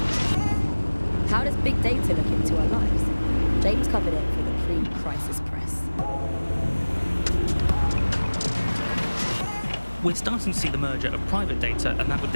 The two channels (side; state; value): both; inverted; correlation -1.00